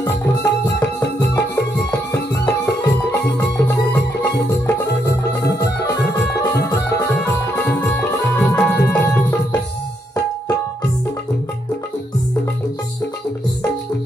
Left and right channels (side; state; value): both; normal; correlation 0.77